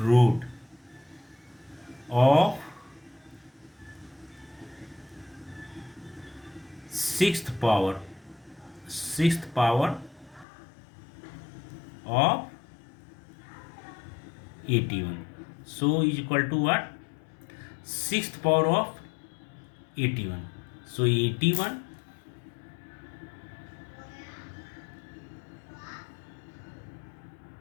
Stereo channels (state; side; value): drops out; right; at 10.5 s